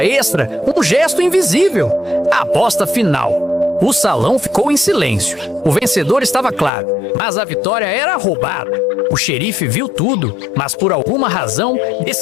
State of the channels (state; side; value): drops out; right; at 6.7 s